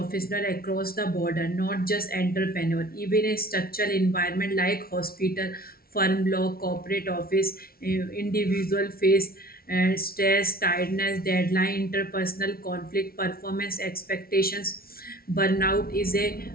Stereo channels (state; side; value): late; right; 0.44 ms